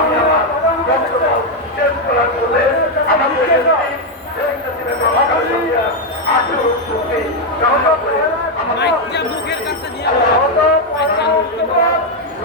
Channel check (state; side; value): normal; both; correlation 0.03